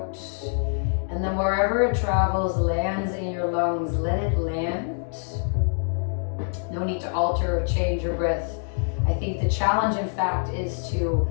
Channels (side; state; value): right; silent; 62 dB below the other